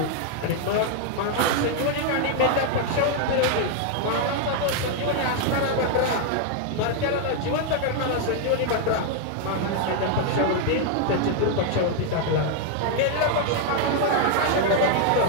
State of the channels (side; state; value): both; different; correlation 0.00